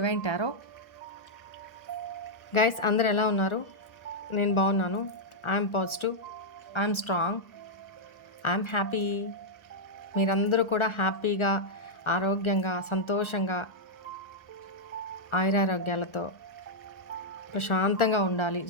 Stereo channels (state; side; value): late; right; 1.4 ms